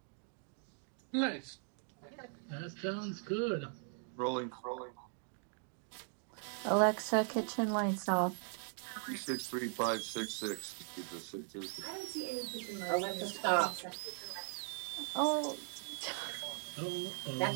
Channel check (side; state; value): left; silent; 51 dB below the other